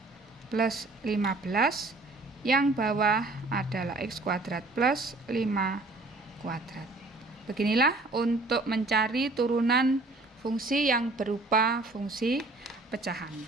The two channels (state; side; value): quieter; left; 3.1 dB